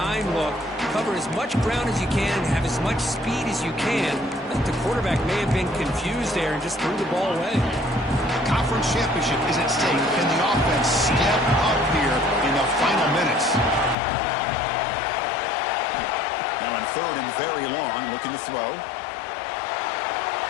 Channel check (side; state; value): right; drops out; at 14.0 s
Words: look. Cover as much ground as you can and have as much speed as you can. I think the quarterback may have been confused there and just threw the ball away. The conference championship is at stake. Can the offense step up here in the final minutes? Now in third and very long, looking to throw.